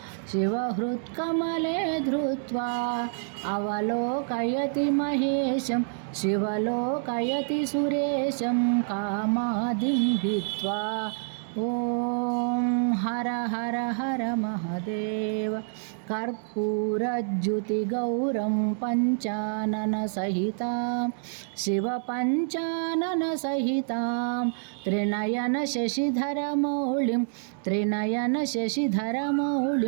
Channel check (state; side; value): silent; left; 60 dB below the other